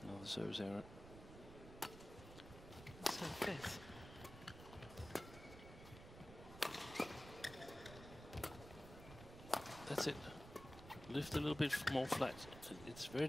Another service error. So fifth. That's it. Lift a little bit more flat. It's very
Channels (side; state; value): right; noise; rumble, 14 dB below the sound